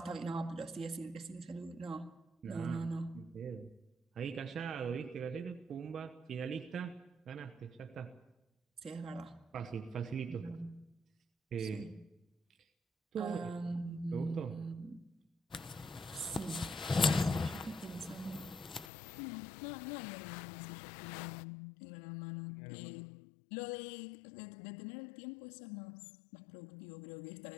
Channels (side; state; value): right; drops out; at 18.9 s